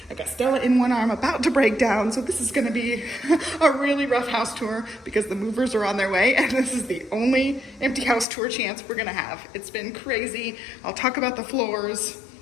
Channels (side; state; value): right; drops out; at 8.2 s